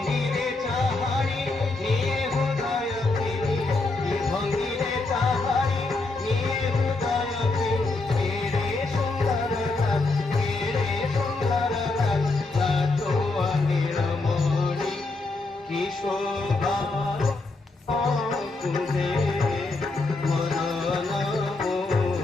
চাহারি নিয়ে হৃদয় তিনি, কি ভঙ্গিরে চাহারি নিয়ে হৃদয় তিনি, কেড়ে সুন্দর লাল, কেড়ে সুন্দর লাল, লাটোয়া নীলমণি কি শোভা কুঞ্জে মনন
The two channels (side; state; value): right; quieter; 3.4 dB